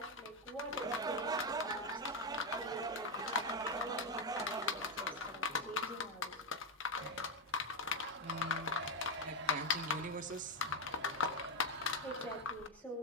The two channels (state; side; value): normal; both; correlation 0.07